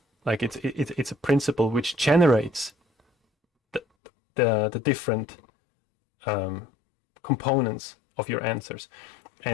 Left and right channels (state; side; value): drops out; right; at 3.8 s